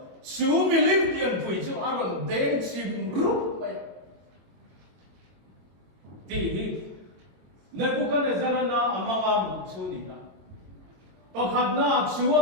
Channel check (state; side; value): late; left; 22 ms